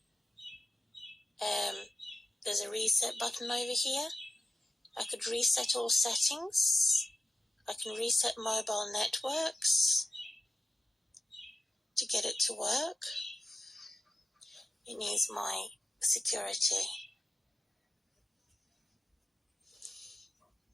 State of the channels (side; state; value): both; normal; correlation 0.92